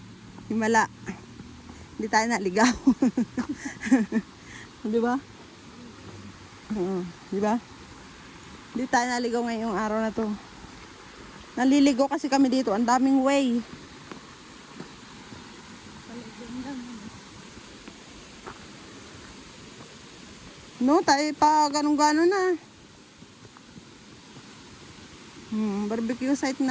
Himala. Hindi tayo naligaw. Di ba? Oo, di ba? Hindi tayo naligaw ngayong araw na to. Naliligo kasi kami dito. Ang daming way. No, tayo pa ganun-ganon na. Barbecue site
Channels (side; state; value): both; identical; correlation 1.00